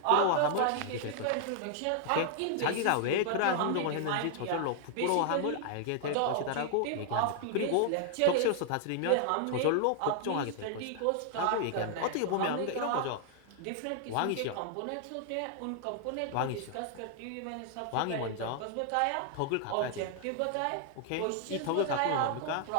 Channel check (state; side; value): different; both; correlation 0.00